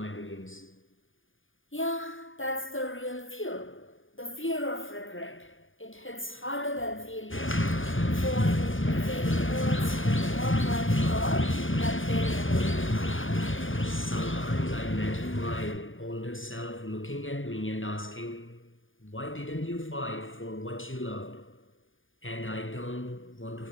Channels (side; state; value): right; late; 0.58 ms